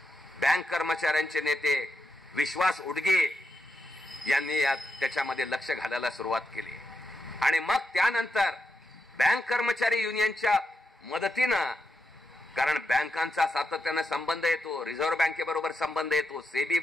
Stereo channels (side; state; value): both; normal; correlation 0.85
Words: बँक कर्मचाऱ्यांचे नेते विश्वास उडगे यांनी त्याच्यामध्ये लक्ष घालायला सुरुवात केली. आणि मग त्यानंतर बँक कर्मचारी युनियनच्या मदतीनं, कारण बँकांचा सातत्यानं संबंध येतो, रिझर्व्ह बँकेबरोबर संबंध येतो, सेबी